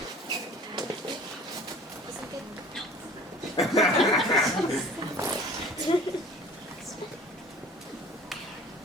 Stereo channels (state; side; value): normal; both; correlation 0.46